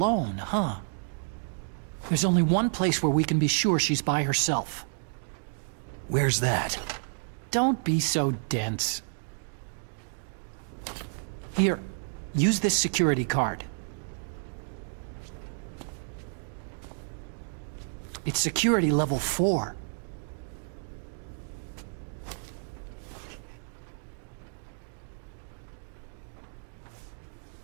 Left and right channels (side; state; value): left; silent; digital silence